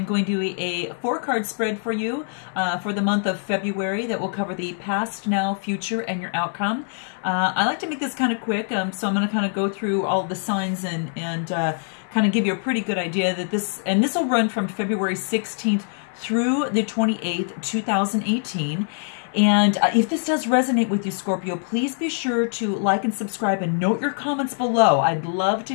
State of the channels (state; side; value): silent; right; digital silence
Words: going to do a 4-card spread for you for the month of February that will cover the past, now, future, and your outcome. I like to make this kind of quick, so I'm going to kind of go through all the signs and kind of give you a pretty good idea that this will run from February 16th through the 28th, 2018. And if this does resonate with you, Scorpio, please be sure to like and subscribe and note your comments below. I'd love to